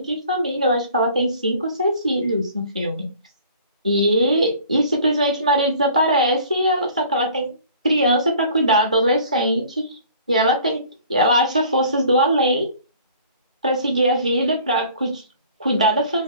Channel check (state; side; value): inverted; both; correlation -0.50